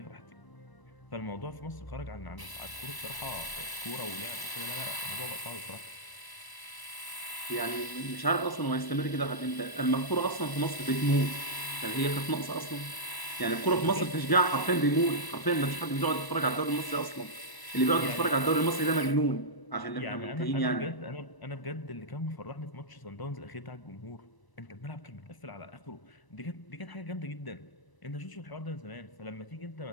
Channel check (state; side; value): late; right; 1.0 ms